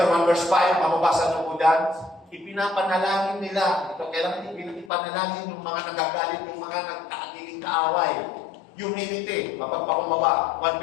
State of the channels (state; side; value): drops out; right; at 4.9 s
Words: 1 verse 5, mababasa niyo po dyan. Ipinapanalangin nila. Ito, kailangan ipanalangin yung mga nagagalit, yung mga nagkakagiging kaaway. Humility, mapagpakumbaba. 1